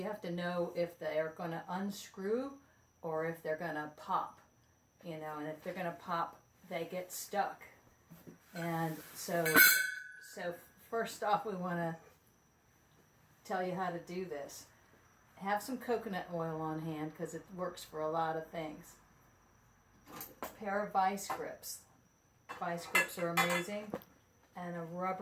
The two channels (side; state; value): both; identical; correlation 1.00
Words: have to know if they are going to unscrew or if they're going to pop. You know, and if they're going to pop, they get stuck. And so first off, we want to tell you how to do this. Have some coconut oil on hand because it works for a lot of things. A pair of vice grips. Vice grips are amazing. And a